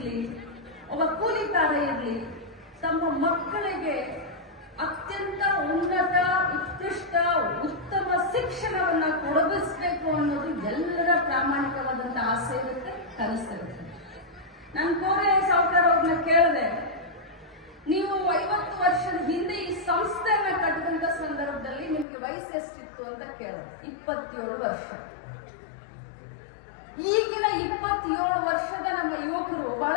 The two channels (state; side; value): drops out; right; at 22.1 s